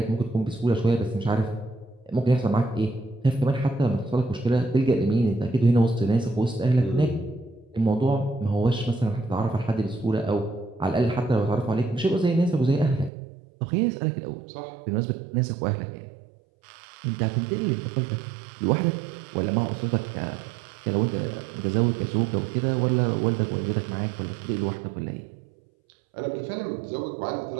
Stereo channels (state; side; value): drops out; left; at 13.1 s